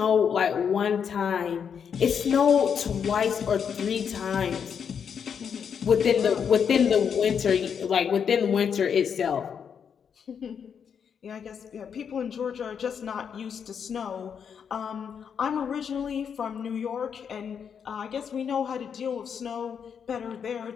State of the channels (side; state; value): right; quieter; 7.2 dB